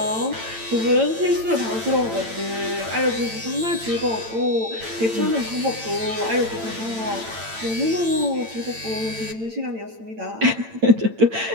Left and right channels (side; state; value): left; late; 8.9 ms